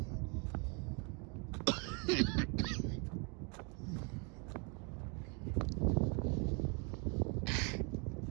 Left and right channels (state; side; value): quieter; left; 31.8 dB